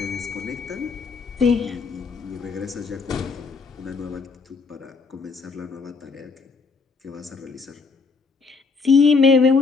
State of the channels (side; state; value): right; quieter; 4.7 dB